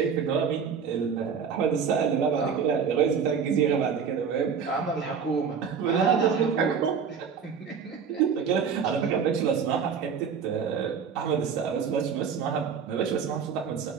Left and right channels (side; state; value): left; quieter; 6.5 dB